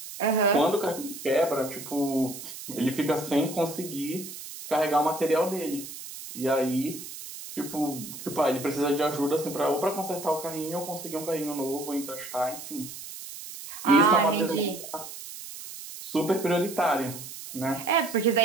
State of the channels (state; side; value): noise; right; hiss, 12 dB below the sound